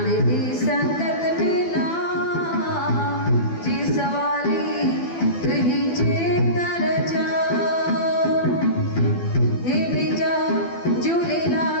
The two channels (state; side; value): late; right; 12 ms